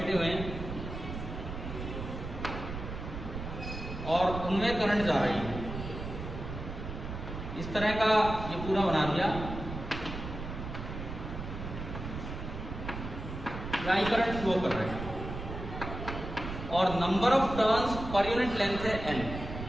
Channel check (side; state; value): right; noise; rumble, 7 dB below the sound